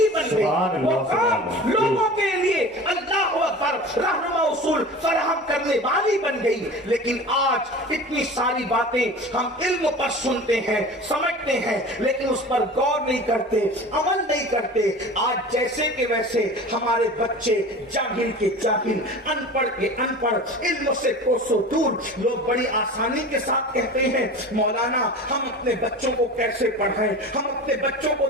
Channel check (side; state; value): both; normal; correlation 0.36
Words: بن گئی. وہ قوم لوگوں کے لیے اللہ اکبر رہنما اصول فراہم کرنے والی بن گئی. لیکن آج اتنی ساری باتیں ہم علم پر سنتے ہیں, سمجھتے ہیں, لیکن اس پر غور نہیں کرتے, عمل نہیں کرتے. آج جیسے کہ ویسے ہمارے بچے جاہل کے جاہل, ان پڑھ کے ان پڑھ, علم سے کوسوں دور. لوگ بڑی آسانی کے ساتھ کہتے ہیں مولانا ہم اپنے بچوں کو کیسے پڑھائیں, ہم اپنے بچوں کو